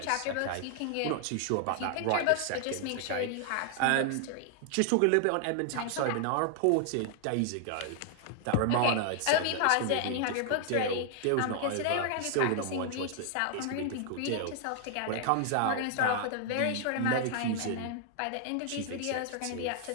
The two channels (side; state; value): both; different; correlation 0.00